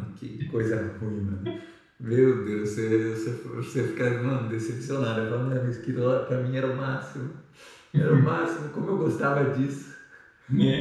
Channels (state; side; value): identical; both; correlation 1.00